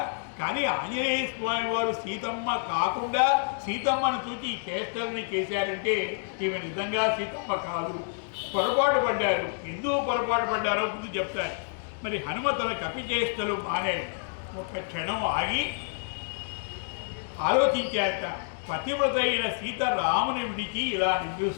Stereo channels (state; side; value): silent; right; digital silence